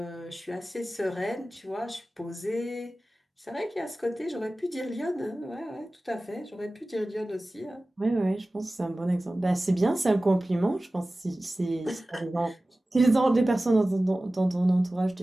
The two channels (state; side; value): normal; both; correlation 0.97